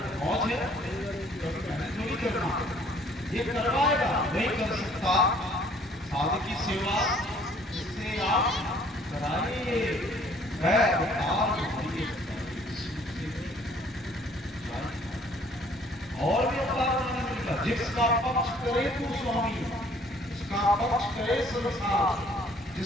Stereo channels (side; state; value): both; normal; correlation 0.59